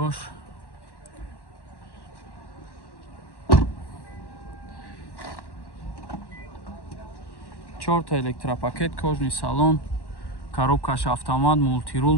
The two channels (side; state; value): right; late; 1.1 ms